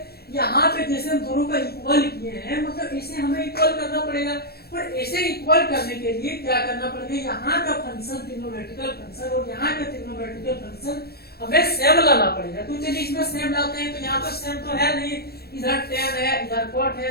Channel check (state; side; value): late; right; 0.46 ms